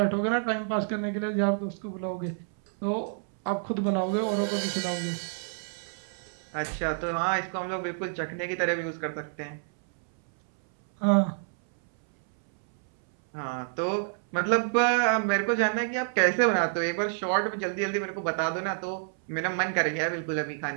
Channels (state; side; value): silent; left; 59 dB below the other